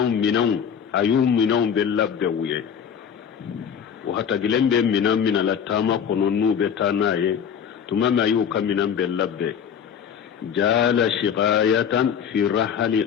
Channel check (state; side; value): quieter; right; 7.8 dB